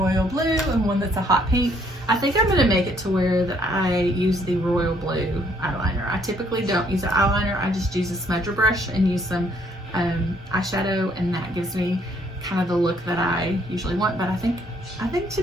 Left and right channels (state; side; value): normal; both; correlation 0.66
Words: blue and one that's a hot pink. I think I'm gonna make it to where that I use the royal blue eyeliner. I typically don't use an eyeliner. I just use a smudger brush and use some eyeshadow, and that gives me kind of the look that I usually want. But I think